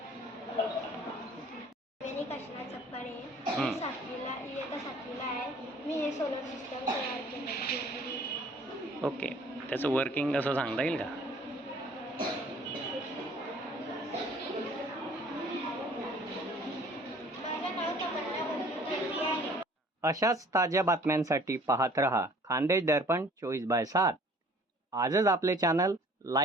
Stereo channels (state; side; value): normal; both; correlation 0.53